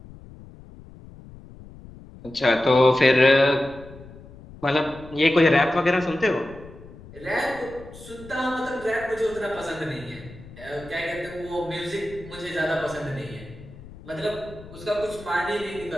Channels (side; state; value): left; noise; rumble, 18 dB below the sound